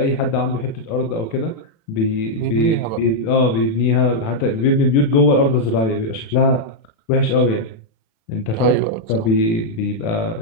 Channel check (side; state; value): right; late; 36 ms